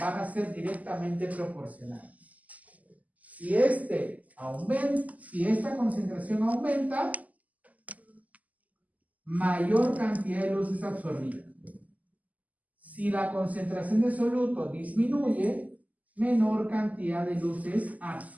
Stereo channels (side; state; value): left; late; 0.076 ms